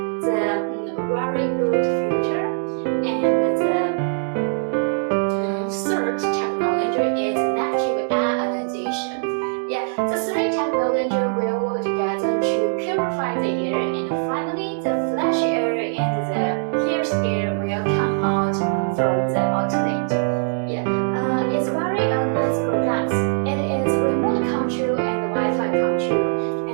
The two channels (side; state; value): left; silent; digital silence